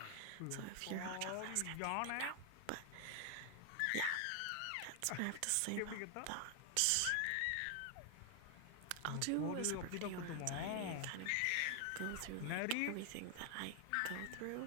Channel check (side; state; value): both; different; correlation 0.00